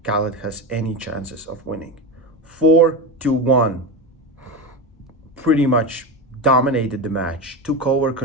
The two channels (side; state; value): both; normal; correlation 0.19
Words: Khalid has any chances of winning. 4-1, pretty much dominated the match, took over